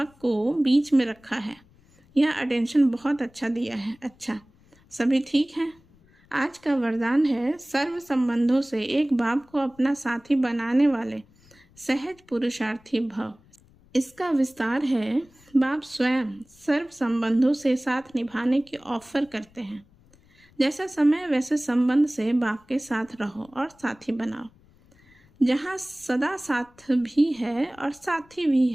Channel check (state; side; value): noise; left; rumble, 29 dB below the sound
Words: को बीच में रखा है। यह अटेंशन बहुत अच्छा दिया है। अच्छा, सभी ठीक हैं। आज का वरदान है सर्व संबंधों से एक बाप को अपना साथी बनाने वाले सहज पुरुषार्थी भव। इसका विस्तार है बाप स्वयं सर्व संबंधों से साथ निभाने की ऑफर करते हैं। जैसा समय वैसे संबंध से बाप के साथ रहो और साथी बनाओ। जहाँ सदा साथ भी है और साथी भी